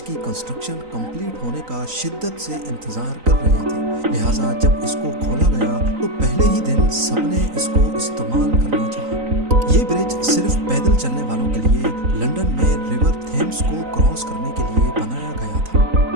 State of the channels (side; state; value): left; late; 3.9 ms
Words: की कंस्ट्रक्शन कंप्लीट होने का शिद्दत से इंतजार कर रहे थे। लिहाजा जब इसको खोला गया तो पहले ही दिन सबने इसको इस्तेमाल करना चाहा। ये ब्रिज सिर्फ पैदल चलने वालों के लिए लंदन में रिवर थेम्स को क्रॉस करने के लिए बनाया गया था,